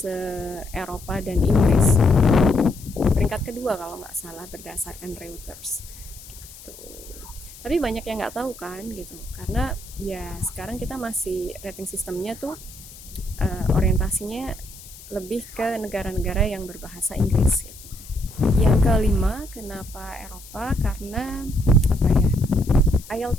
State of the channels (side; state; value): left; noise; hiss, 18 dB below the sound